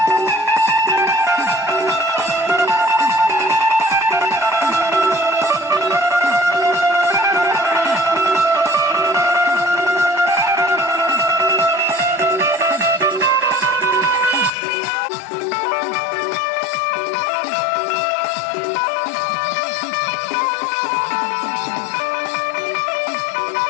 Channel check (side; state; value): right; drops out; at 14.5 s